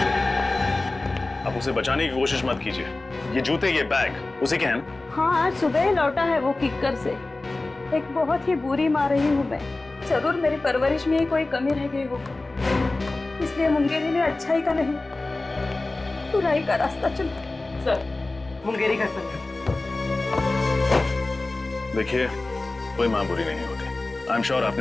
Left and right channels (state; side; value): quieter; right; 3.1 dB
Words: आप उसे बचाने की कोशिश मत कीजिए। ये जूते, ये बैग उसी के हैं ना? हाँ, आज सुबह ही लौटा है वो किक्कर से। एक बहुत ही बुरी माँ रही हूँ मैं, जरूर मेरी परवरिश में ही कोई कमी रह गई होगी, इसलिए मुंगेरी ने अच्छाई का नहीं बुराई का रास्ता चुना। सर, मुंगेरी घर पर देखिए, कोई माँ बुरी नहीं होती। आई एम श्योर